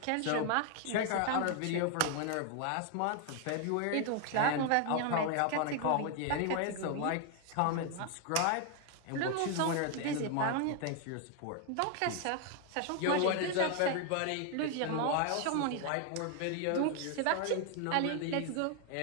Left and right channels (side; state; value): both; different; correlation 0.00